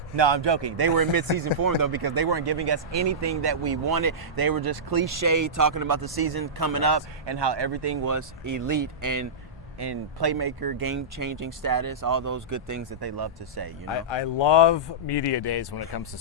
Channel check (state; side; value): normal; both; correlation -0.15